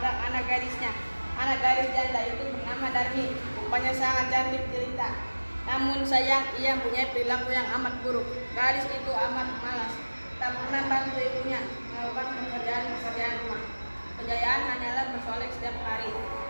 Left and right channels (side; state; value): both; inverted; correlation -1.00